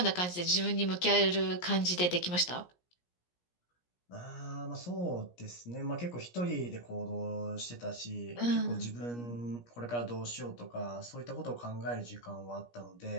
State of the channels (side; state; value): right; late; 17 ms